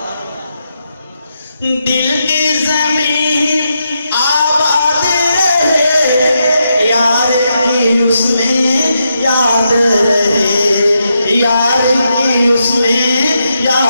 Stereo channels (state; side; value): inverted; both; correlation -0.83